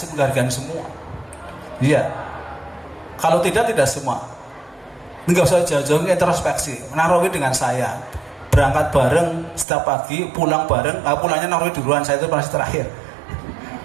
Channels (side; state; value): left; drops out; at 9.7 s